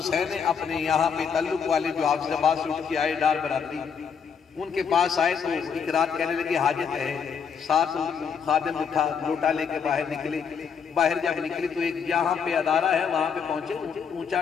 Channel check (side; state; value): right; quieter; 6.7 dB